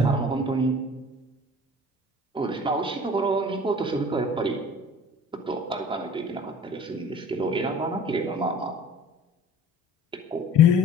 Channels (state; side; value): normal; both; correlation 0.46